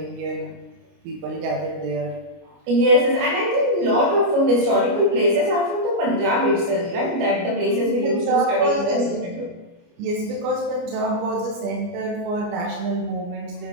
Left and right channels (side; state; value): left; late; 29 ms